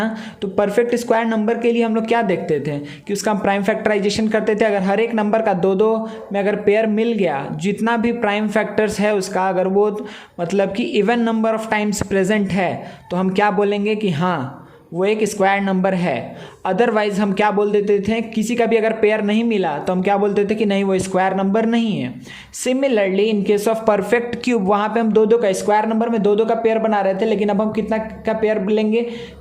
तो परफेक्ट स्क्वायर नंबर के लिए हम लोग क्या देखते थे कि उसका हम प्राइम फैक्टराइजेशन करते थे। अगर हर एक नंबर का 2-2 में अगर पेयर मिल गया, जितना भी प्राइम फैक्टर्स है उसका अगर वो मतलब कि even number of times present है, तो हम क्या बोलेंगे कि हाँ वो एक स्क्वायर नंबर है। अदरवाइज हम क्या बोल देते थे, किसी का भी अगर पेयर नहीं मिला तो हम क्या बोलते थे कि नहीं वो स्क्वायर नंबर नहीं है। Similarly in case of perfect cube, वहाँ पे हम दो दो का स्क्वायर नंबर में दो दो का पेयर बना रहे थे, लेकिन अब हम कितना का पेयर लेंगे,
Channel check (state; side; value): identical; both; correlation 1.00